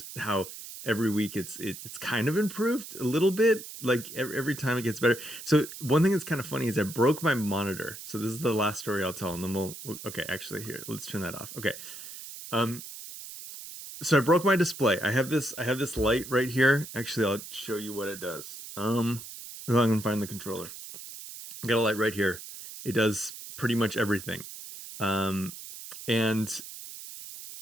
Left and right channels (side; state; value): right; noise; hiss, 12 dB below the sound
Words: how every week it's kind of improved a little bit. Like every time it gets better. So one thing that's kind of funny is I broke my monitor. So this is the last story I'll tell, and then okay. Actually, here, let's turn that off. Okay. Um. So I broke my display. I have this light right here. Actually, I'll show you what it does. I'm gonna find the controller. I got a light right here. It does pretty much everything. Um, and